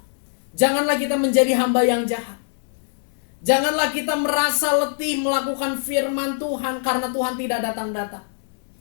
janganlah kita menjadi hamba yang jahat. Janganlah kita merasa letih melakukan firman Tuhan karena Tuhan tidak datang-datang.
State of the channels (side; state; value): right; silent; digital silence